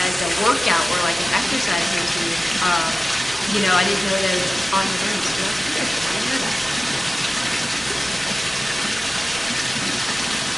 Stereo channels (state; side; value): noise; left; rumble, 23 dB below the sound